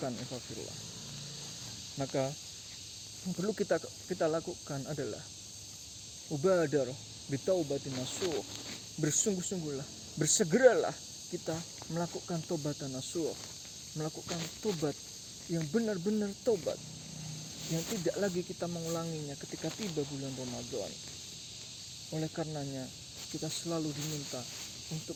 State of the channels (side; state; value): both; identical; correlation 1.00